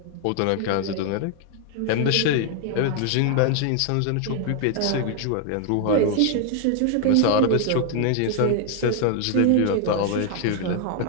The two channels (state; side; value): different; both; correlation 0.00